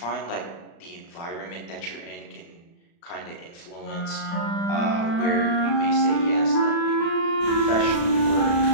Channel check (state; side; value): late; right; 35 ms